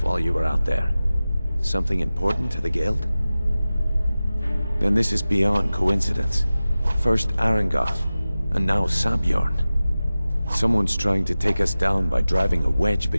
while you were out there. Something important to the Guild? Then this is beyond coincidence. First Arangoth, and now Sabjorn. Someone's trying to take us down by driving a wedge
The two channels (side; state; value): both; inverted; correlation -0.96